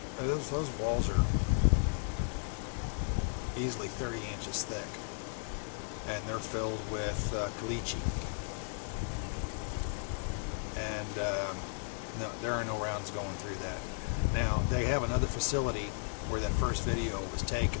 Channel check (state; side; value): silent; right; 55 dB below the other